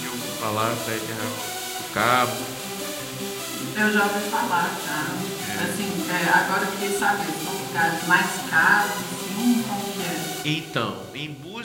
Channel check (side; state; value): both; identical; correlation 1.00